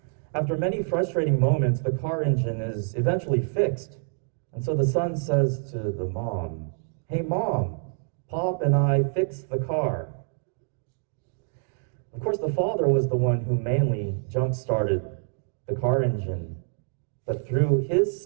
After many frustrating moments, the car engine is eventually fixed. And so the son says to the mom, "Hey, Mom, Pop and I fixed the car." Of course, the father was the one who mainly jump-started the car engine. But through his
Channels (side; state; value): left; silent; 60 dB below the other